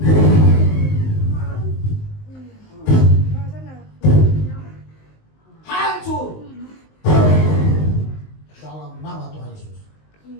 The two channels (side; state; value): right; late; 19 ms